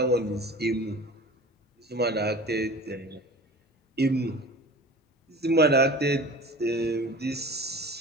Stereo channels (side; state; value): both; normal; correlation 0.38